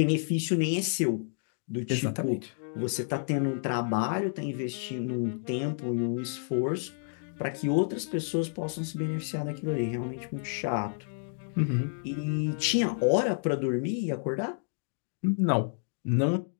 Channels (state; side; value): silent; right; digital silence